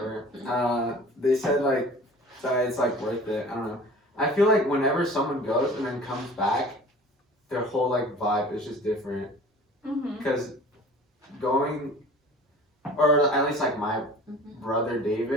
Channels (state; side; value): normal; both; correlation 0.44